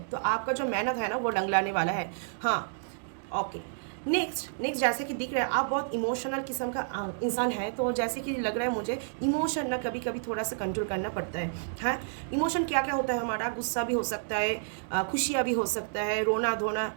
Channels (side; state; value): left; silent; digital silence